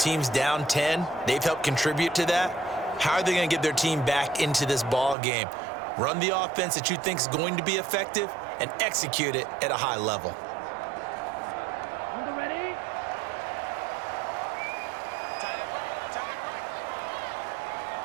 down 10. They've helped contribute to that. How are they going to get their team back into this ball game? Run the offense that you think is going to be effective and execute it at a high level. On the ready.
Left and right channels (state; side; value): drops out; left; at 5.2 s